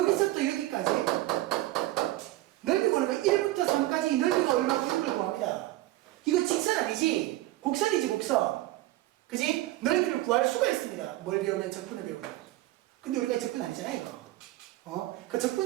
여기까지 넓이 구하는 거 1부터 3까지 넓이가 얼마고 이걸 구합니다. 이거 직선 아니지? 곡선이지 곡선. 그지? 넓이를 구할 수가 있습니다. 뭘 배우면 적분을 배우는. 근데 우리가 적분 아니잖아요 이거. 그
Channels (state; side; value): quieter; left; 16.9 dB